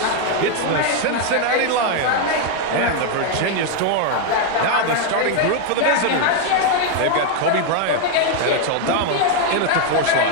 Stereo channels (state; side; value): different; both; correlation 0.00